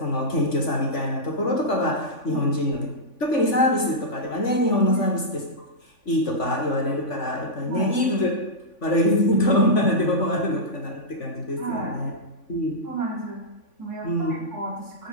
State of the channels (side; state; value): right; late; 3.5 ms